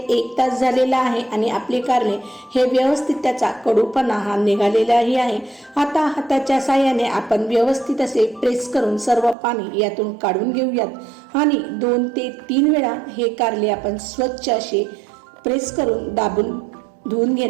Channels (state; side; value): drops out; left; at 9.3 s